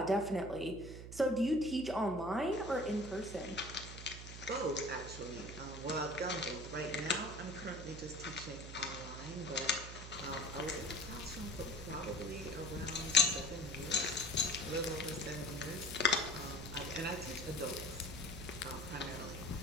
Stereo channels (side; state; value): right; noise; hum, 10 dB below the sound